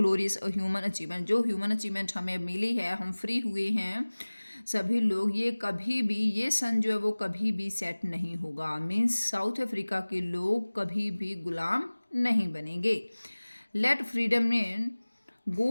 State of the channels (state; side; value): inverted; both; correlation -1.00